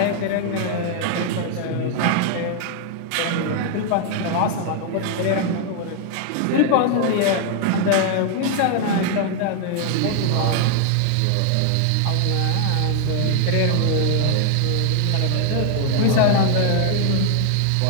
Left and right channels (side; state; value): both; different; correlation 0.00